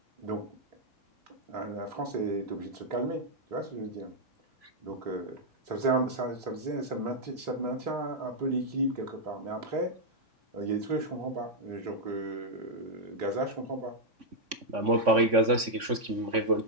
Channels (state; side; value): late; left; 3.5 ms